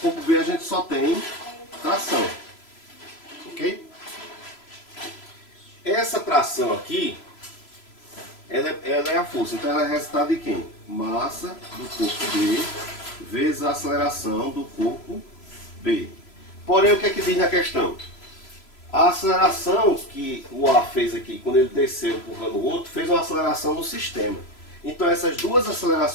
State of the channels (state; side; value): late; right; 3.0 ms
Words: B a gente só tem tração. Ok? Essa tração aqui, ela é a força. Então ela é resultado de quem? Massa do corpo B vezes a aceleração do corpo B. Porém, o que é que diz na questão? A aceleração que o A fez aqui, quando ele desceu empurrando o outro, fez uma aceleração no sistema. Então essas duas